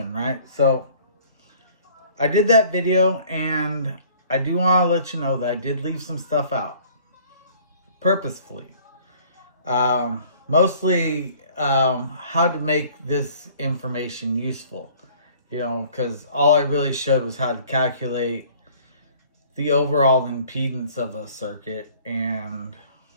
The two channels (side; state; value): both; inverted; correlation -0.54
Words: right? So, I did that video, and I do want to let you know that I did leave some stuff out purposefully. Mostly how to make this information useful, because all I really showed was how to calculate the overall impedance of a circuit, and